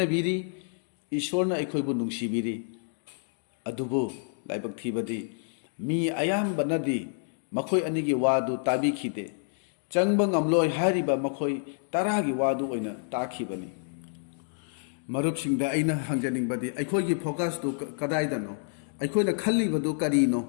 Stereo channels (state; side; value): silent; right; digital silence